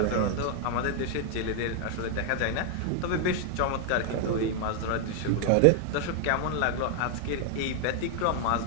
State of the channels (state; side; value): different; both; correlation 0.00